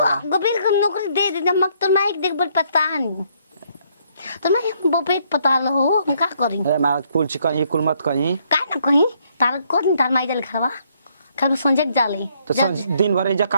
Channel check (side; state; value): both; inverted; correlation -0.69